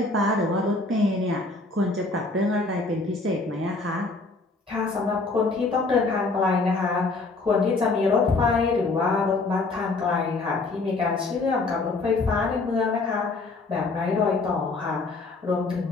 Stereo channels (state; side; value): quieter; right; 3.5 dB